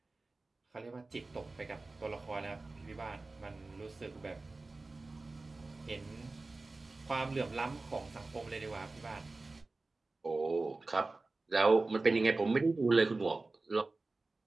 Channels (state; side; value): quieter; left; 3.4 dB